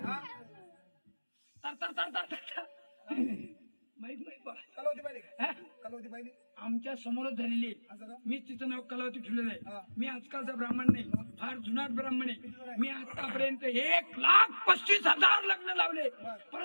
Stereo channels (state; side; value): inverted; both; correlation -1.00